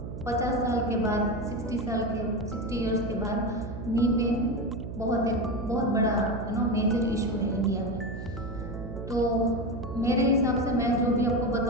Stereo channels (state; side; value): noise; right; hum, 8 dB below the sound